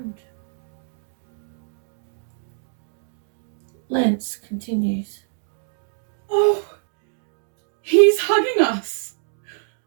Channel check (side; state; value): left; silent; digital silence